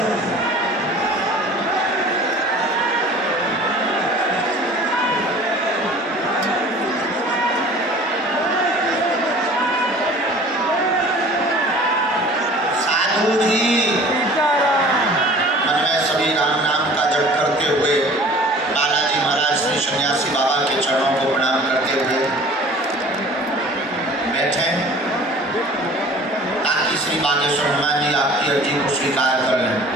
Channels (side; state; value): both; normal; correlation 0.46